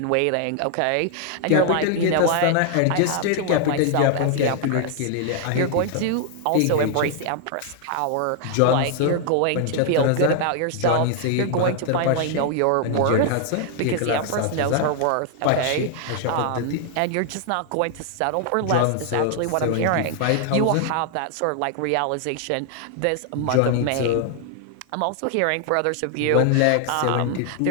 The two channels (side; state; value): both; different; correlation 0.00